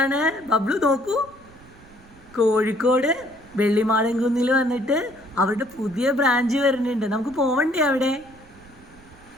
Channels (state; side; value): noise; right; rumble, 24 dB below the sound